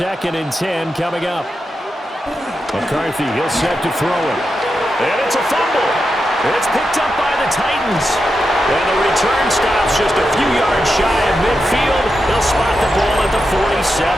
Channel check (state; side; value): normal; both; correlation 0.88